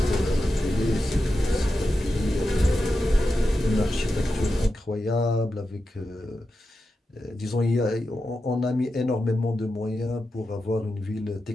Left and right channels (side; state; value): both; normal; correlation 0.90